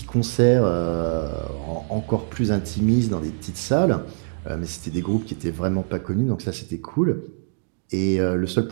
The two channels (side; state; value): left; silent; digital silence